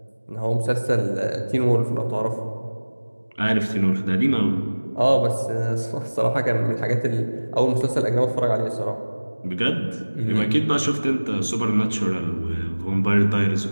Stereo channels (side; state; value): both; inverted; correlation -1.00